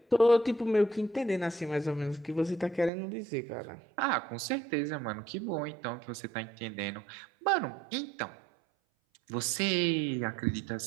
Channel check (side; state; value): left; drops out; at 2.9 s